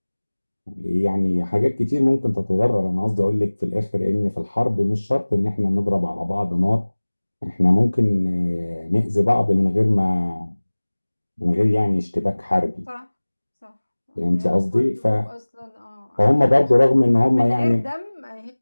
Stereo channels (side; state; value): both; inverted; correlation -1.00